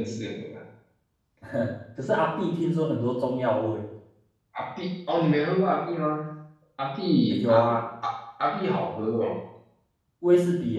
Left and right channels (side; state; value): both; identical; correlation 1.00